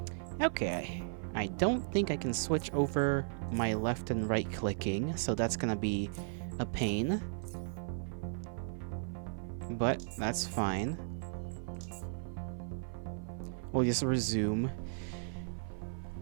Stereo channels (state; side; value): silent; left; 54 dB below the other